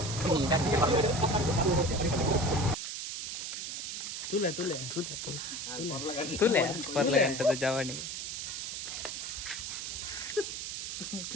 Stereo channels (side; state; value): right; noise; hiss, 5 dB below the sound